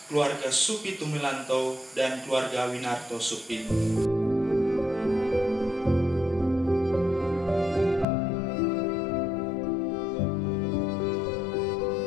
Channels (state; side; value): drops out; right; at 8.1 s